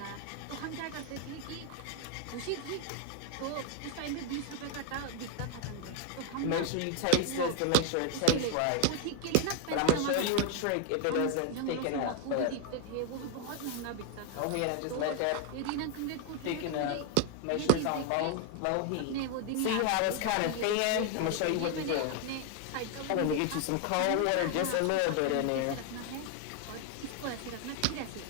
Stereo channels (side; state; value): both; different; correlation 0.01